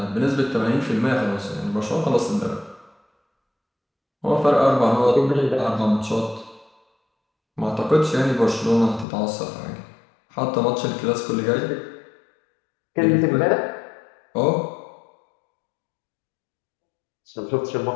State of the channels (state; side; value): drops out; right; at 9.1 s